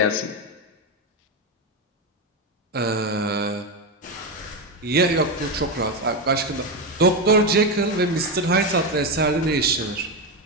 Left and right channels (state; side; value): normal; both; correlation 0.11